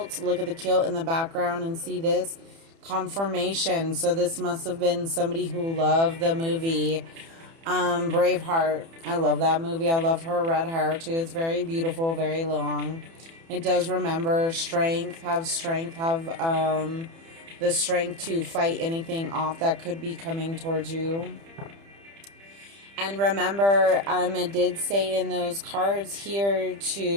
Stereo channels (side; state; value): left; late; 30 ms